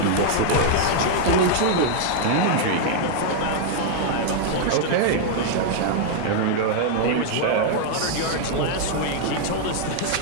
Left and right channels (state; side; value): different; both; correlation 0.00